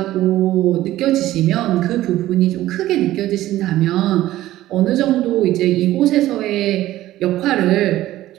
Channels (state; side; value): quieter; left; 15.0 dB